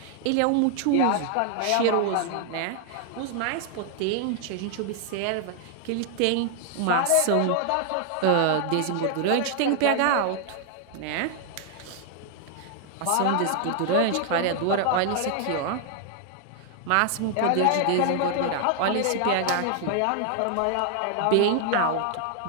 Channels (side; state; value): both; different; correlation 0.00